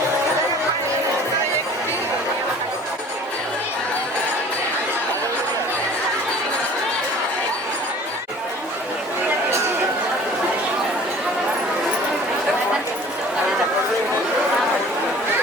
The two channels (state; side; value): normal; both; correlation 0.47